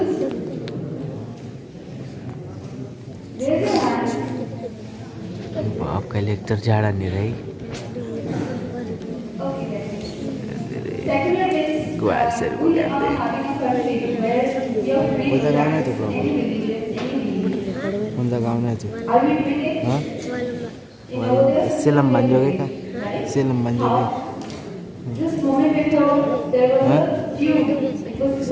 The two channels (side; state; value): both; identical; correlation 1.00